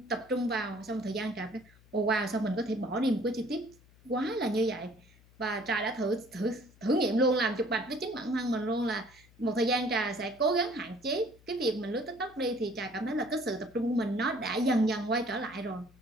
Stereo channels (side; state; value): left; noise; hum, 27 dB below the sound